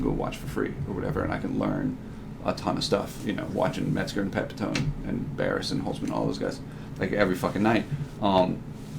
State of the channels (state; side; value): identical; both; correlation 1.00